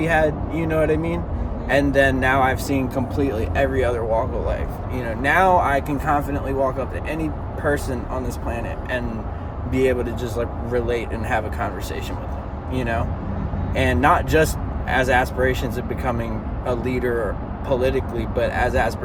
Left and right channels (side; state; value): both; identical; correlation 1.00